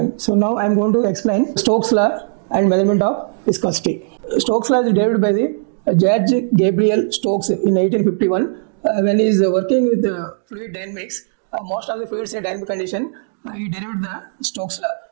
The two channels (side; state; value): left; silent; digital silence